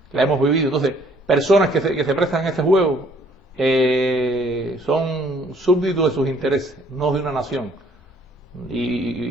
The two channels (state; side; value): normal; both; correlation 0.61